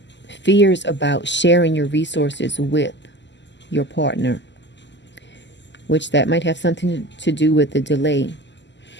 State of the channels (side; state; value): right; late; 0.52 ms